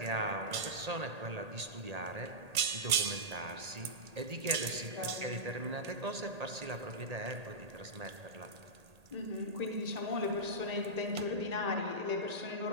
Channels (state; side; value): late; left; 1.8 ms